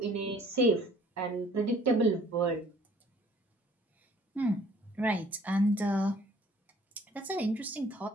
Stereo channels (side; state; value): both; normal; correlation 0.56